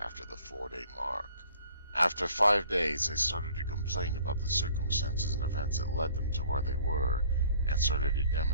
the 4-day mark. After 5 days, they started to complain about the circumstances and events that led them to where they were, and started to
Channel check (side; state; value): both; inverted; correlation -0.54